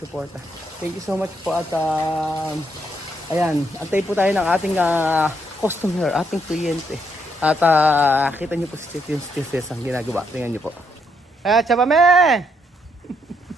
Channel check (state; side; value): normal; both; correlation 0.75